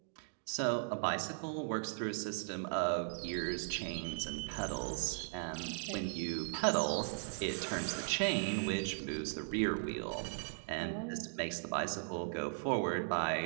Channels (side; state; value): left; silent; digital silence